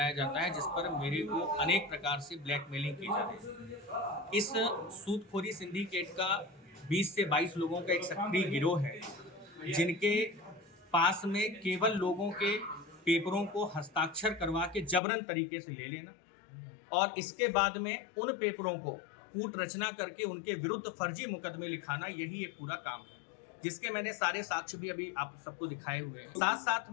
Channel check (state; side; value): drops out; right; at 15.0 s